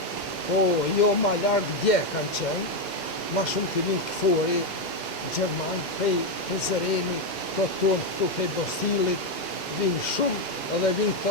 Po, jo ma larkë dje kanë qenë, ma shumë të vinë këfori, Gjerman, prej Zëreni, të tonë këtu prej Bostilit, vinë shumë, edhe vinë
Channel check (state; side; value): normal; both; correlation 0.05